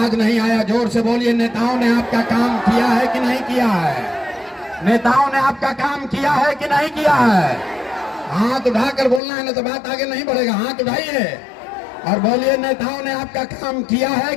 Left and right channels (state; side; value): drops out; right; at 9.2 s